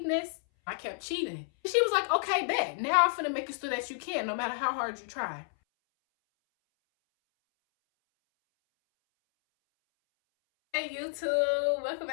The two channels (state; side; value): silent; right; 57 dB below the other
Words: this? I kept cheating. She was like, okay, bet. Now I'm finna make it so that you can, no matter how hard you try. Hey YouTube, welcome